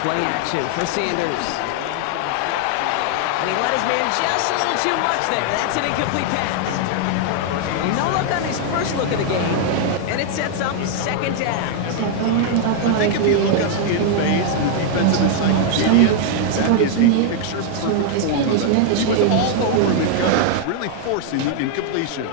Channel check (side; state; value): both; different; correlation 0.00